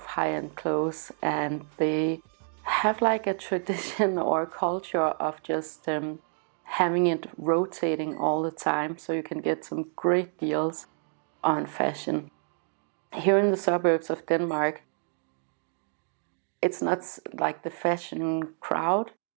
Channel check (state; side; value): silent; left; 59 dB below the other